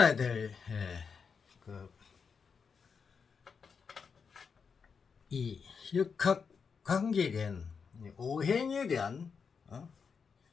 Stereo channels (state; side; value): quieter; right; 5.8 dB